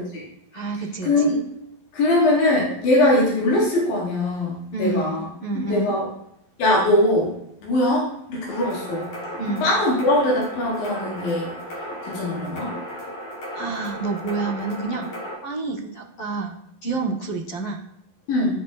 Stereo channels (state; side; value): late; right; 11 ms